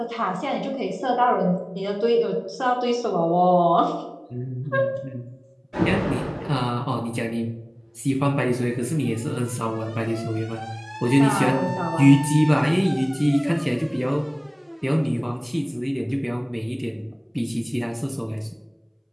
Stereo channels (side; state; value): both; identical; correlation 1.00